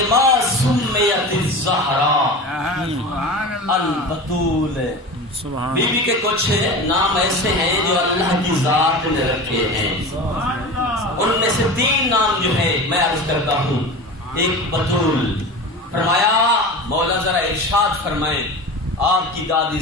سمیت الزہرا البتول. بی بی کے کچھ نام ایسے ہیں جو اللہ کی ذات نے رکھے ہیں. ان میں سے 3 نام جو ہے میں عرض کرتا ہوں. ایک بتول. فرمایا مولا ذرا ارشاد فرمائیں آپ کی دادی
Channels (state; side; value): normal; both; correlation 0.31